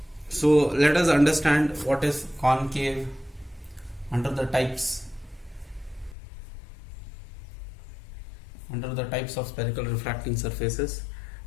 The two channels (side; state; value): right; drops out; at 6.2 s